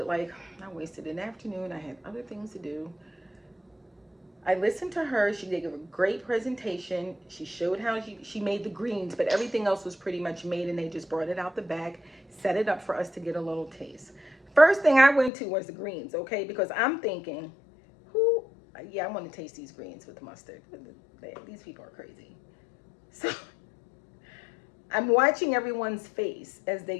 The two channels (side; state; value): right; drops out; at 15.3 s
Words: like I wasted an afternoon. I had other things to do. I listened to her. She did a great presentation. She showed how she made the greens, but everything else was pretty much made, and they just brought it out the bag, set it up for us to get a little taste. First thing I went to was the greens, okay? Because I'm thinking, I want to taste these greens with mustard. These people are crazy. So I'm watching everyone's face as